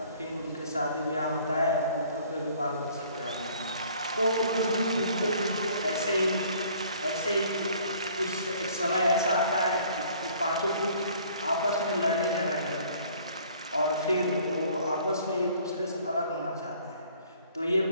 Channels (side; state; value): both; inverted; correlation -0.56